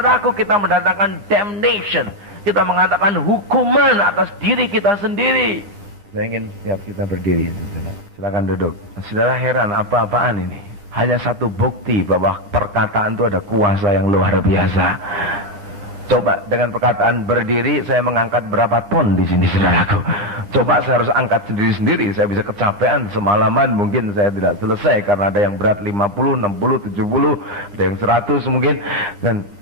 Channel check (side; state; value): left; late; 10 ms